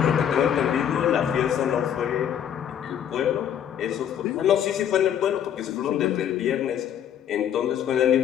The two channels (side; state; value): right; quieter; 9.5 dB